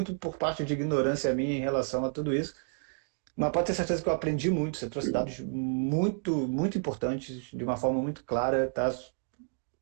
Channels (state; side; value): silent; left; 58 dB below the other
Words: por parte de ignorância minha em relação a tudo isso. Mas pode ter certeza que eu aprendi muito. Você trouxe dados muito, muito importantes, de uma forma muito clara, tá?